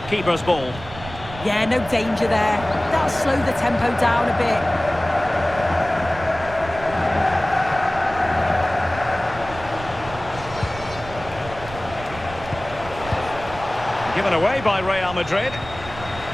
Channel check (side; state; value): right; noise; rumble, 14 dB below the sound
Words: Keeper's ball. Yeah, no danger there. That'll slow the tempo down a bit. Given away by Real Madrid.